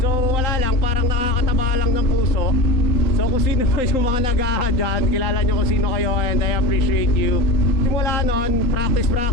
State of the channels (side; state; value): right; late; 3.9 ms